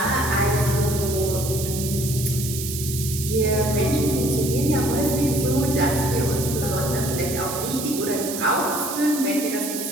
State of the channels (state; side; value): noise; right; hiss, 6 dB below the sound